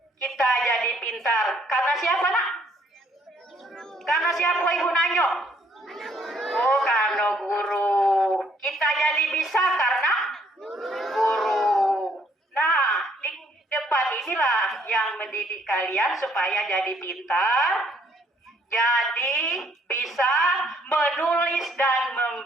kita jadi pintar. Karena siapa, nak? Karena siapa ibu nanyo? Oh, karena guru. Kita jadi bisa karena guru. Nah, di depan inilah yang mendidik kalian supaya jadi pintar, jadi bisa menulis dan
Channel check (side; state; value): both; normal; correlation 0.65